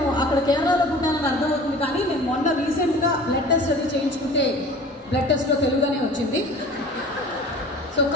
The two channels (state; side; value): normal; both; correlation 0.43